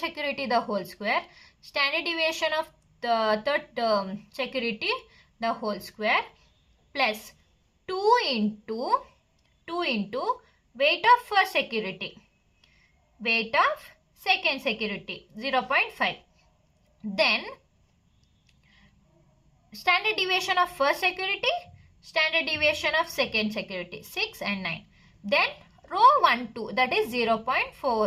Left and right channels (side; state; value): both; identical; correlation 1.00